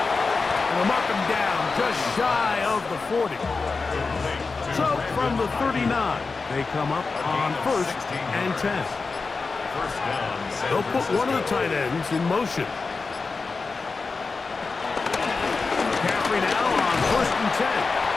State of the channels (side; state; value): right; quieter; 4.3 dB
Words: And they'll mark him down just shy of the 40. So from the 39, they come up on 1st and 10. They'll put one of the tight ends in motion. McCaffrey now on 1st and 10.